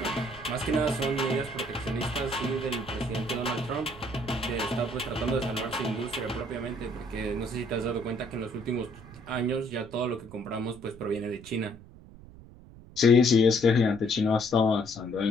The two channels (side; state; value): right; noise; rumble, 19 dB below the sound